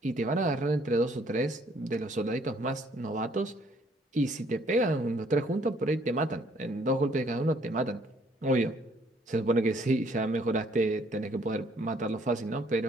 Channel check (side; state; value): both; normal; correlation 0.63